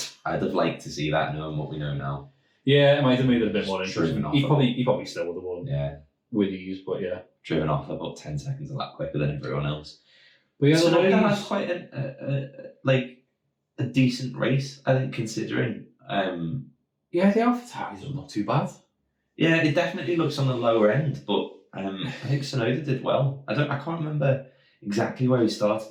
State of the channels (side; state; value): both; identical; correlation 1.00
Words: I'd have liked to see that, knowing what we know now. Yeah, it might have made it a bit more interesting. He probably still would have won. Yeah. With ease, but driven off about 10 seconds a lap quicker than everyone else. But so that was quite a decent race, I think, considering. The AlphaTauri was not too bad. Yeah, it definitely looks on the lower end, but I think Tsunoda did well. I can't remember exactly where he